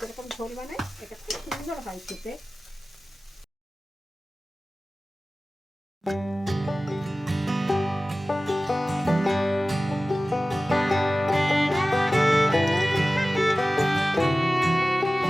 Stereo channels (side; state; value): both; normal; correlation 0.96